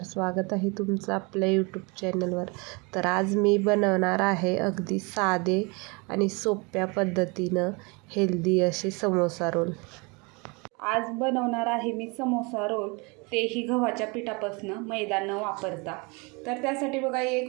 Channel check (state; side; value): quieter; left; 29.0 dB